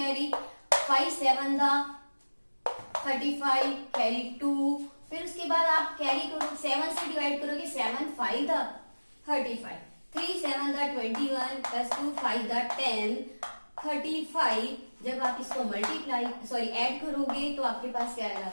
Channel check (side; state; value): both; inverted; correlation -1.00